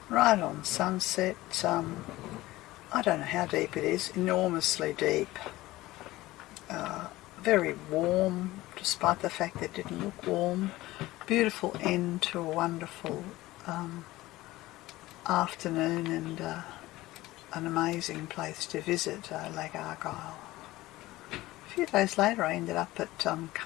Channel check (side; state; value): right; quieter; 17.9 dB